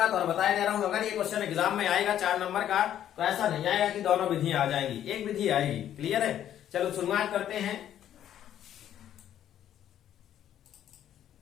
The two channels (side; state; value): right; quieter; 10.9 dB